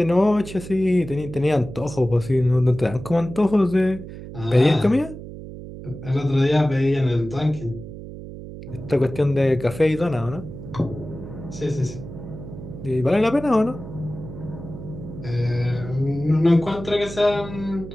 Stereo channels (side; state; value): right; noise; hum, 12 dB below the sound